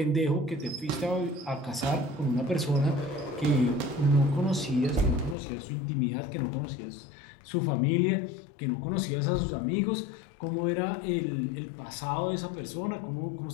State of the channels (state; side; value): drops out; right; at 5.4 s